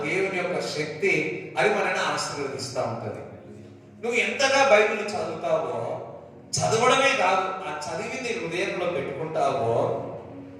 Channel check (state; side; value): identical; both; correlation 1.00